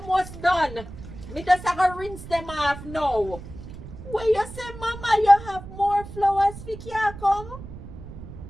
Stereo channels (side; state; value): right; noise; rumble, 13 dB below the sound